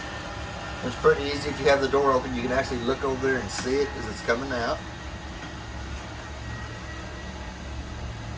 It's pretty easy. If you have the door open, you can actually look over there and see it as it's coming out.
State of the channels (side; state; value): both; identical; correlation 1.00